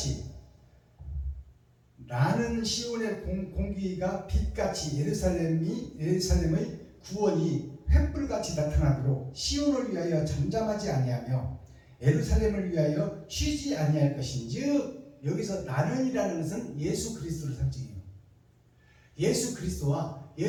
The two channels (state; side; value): identical; both; correlation 1.00